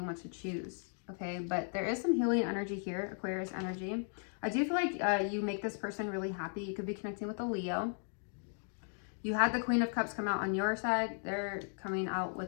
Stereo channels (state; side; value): silent; right; 54 dB below the other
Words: to choose. Okay, but there is some healing energy here, Aquarius energy. I do feel like you make this person really happy. You could be connecting with a Leo. You had the Queen of Cups come out on your side. They're coming out